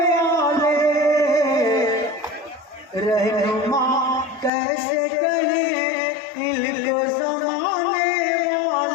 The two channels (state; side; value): drops out; right; at 4.5 s